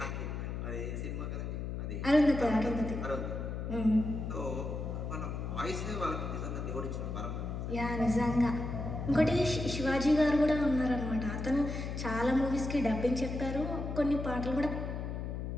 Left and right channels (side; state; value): left; noise; hum, 4 dB below the sound